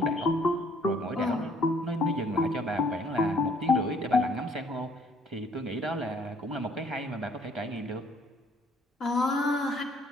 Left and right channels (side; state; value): both; normal; correlation 0.61